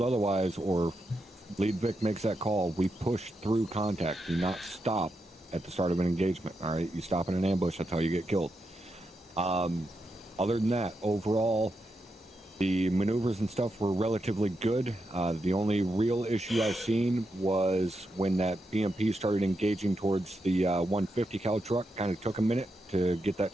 otherwise or Lead Vic makes that call, we push through contact. Do not stop at the start of an engagement. All right, you stop in an ambush, that's how you get killed. Other than that, overall, the maneuvers and stuff were relatively good. The only real issue I've seen was when that BMP started engaging towards the 150 cal truck. Kind of took a minute to get that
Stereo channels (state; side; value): normal; both; correlation 0.85